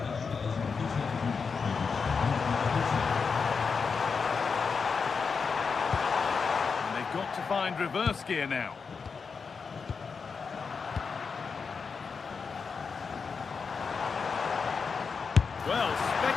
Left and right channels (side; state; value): right; quieter; 5.4 dB